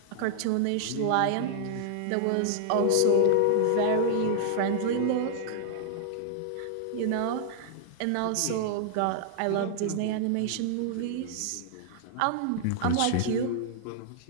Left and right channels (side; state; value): both; different; correlation -0.01